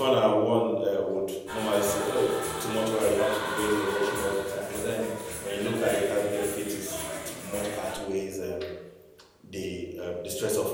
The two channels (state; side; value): identical; both; correlation 1.00